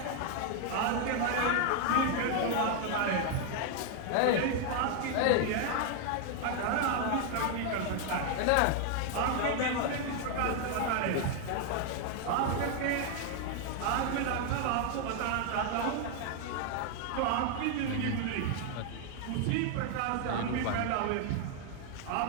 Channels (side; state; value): both; different; correlation 0.01